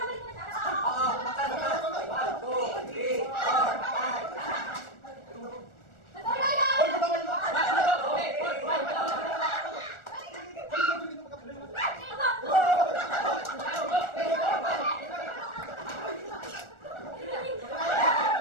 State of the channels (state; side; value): late; right; 1.4 ms